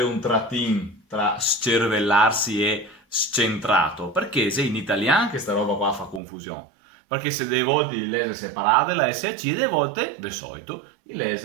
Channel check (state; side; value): drops out; left; at 6.2 s